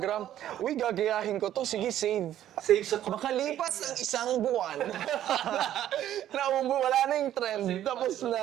Uy, gagayahin ko to. Sige, save. Save sa Makalipas ang isang buwan. Wala na yung trend. Tapos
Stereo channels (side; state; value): left; quieter; 11.9 dB